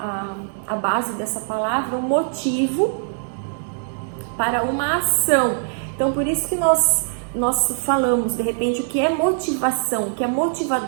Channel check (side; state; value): left; silent; digital silence